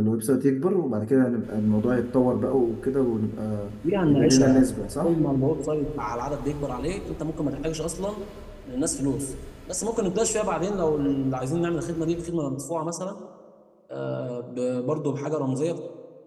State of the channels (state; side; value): identical; both; correlation 1.00